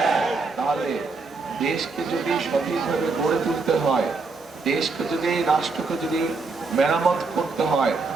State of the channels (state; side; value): quieter; left; 4.1 dB